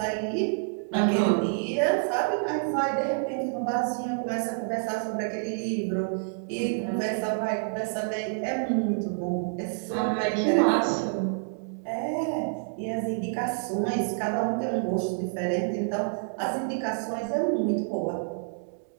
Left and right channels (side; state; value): left; silent; digital silence